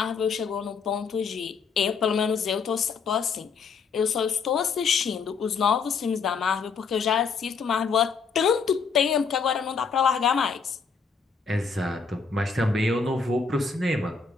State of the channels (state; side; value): quieter; right; 5.4 dB